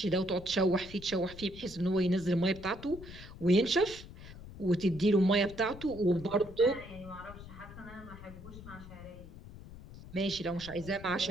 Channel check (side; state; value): left; noise; rumble, 15 dB below the sound